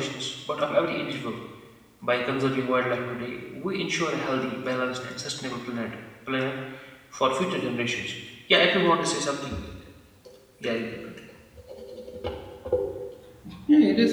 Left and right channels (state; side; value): identical; both; correlation 1.00